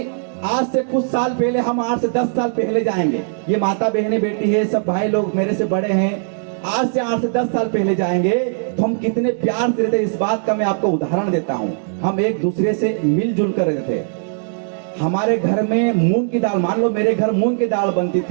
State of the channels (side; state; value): left; silent; digital silence